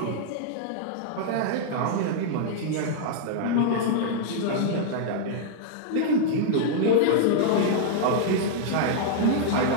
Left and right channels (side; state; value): both; different; correlation -0.01